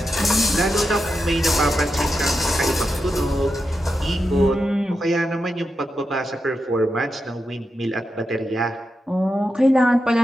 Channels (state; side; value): normal; both; correlation 0.88